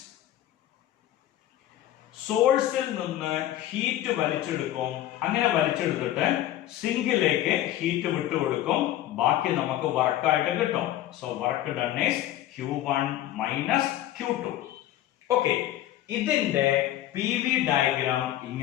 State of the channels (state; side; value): quieter; right; 13.3 dB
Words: സോഴ്സിൽ നിന്ന് ഹീറ്റ് വലിച്ചെടുക്കും. അങ്ങനെ വലിച്ചെടുത്തിട്ട് സിങ്കിലേക്ക് ഹീറ്റ് വിട്ടുകൊടുക്കും. ബാക്കി നമുക്ക് വർക്കായിട്ട് കിട്ടും. So work done is Q1 minus Q2. Okay, ഇതിന്റെ PV ഡയഗ്രാം